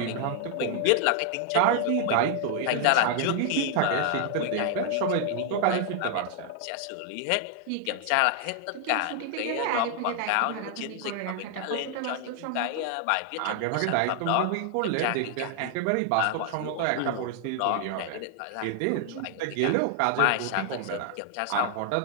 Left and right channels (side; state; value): both; different; correlation 0.00